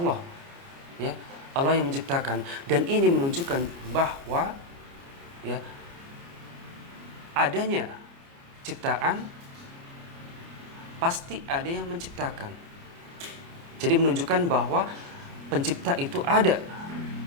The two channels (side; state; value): left; late; 29 ms